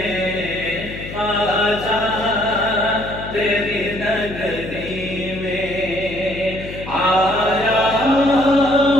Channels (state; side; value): noise; left; hum, 11 dB below the sound